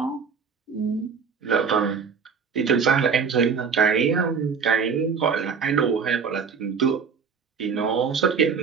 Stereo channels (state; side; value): quieter; left; 6.0 dB